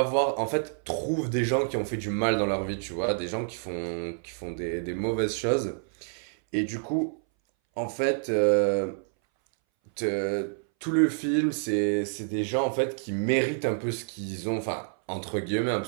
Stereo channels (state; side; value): silent; left; 59 dB below the other